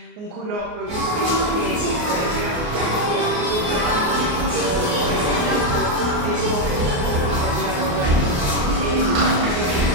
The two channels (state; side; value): late; left; 28 ms